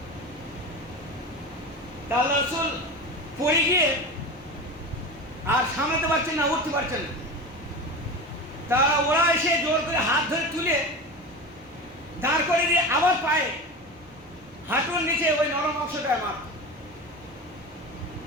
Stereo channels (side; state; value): both; normal; correlation 0.28